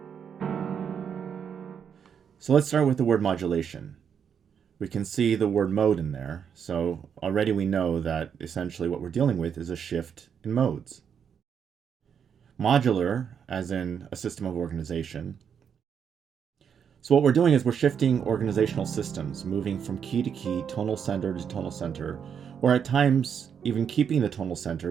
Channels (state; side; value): quieter; left; 7.5 dB